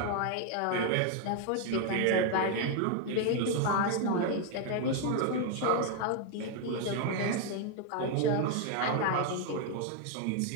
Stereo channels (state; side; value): different; both; correlation 0.01